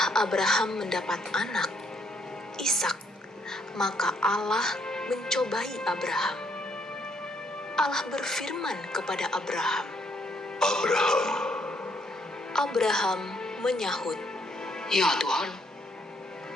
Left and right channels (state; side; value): normal; both; correlation 0.70